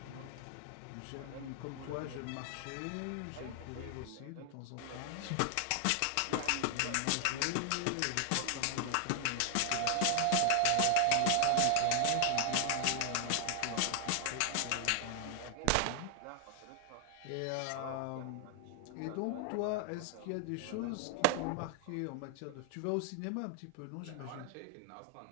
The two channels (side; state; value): both; different; correlation 0.00